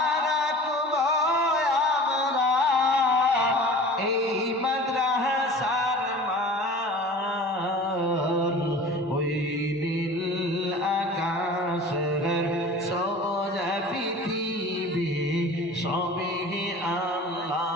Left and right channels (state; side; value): normal; both; correlation 0.41